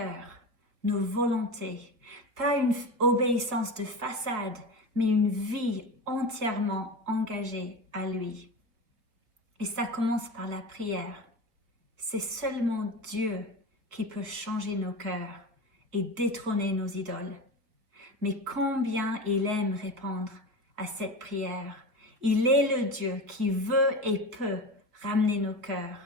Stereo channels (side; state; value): left; late; 4.4 ms